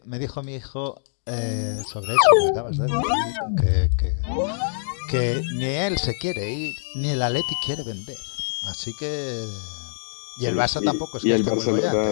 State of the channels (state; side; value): silent; right; digital silence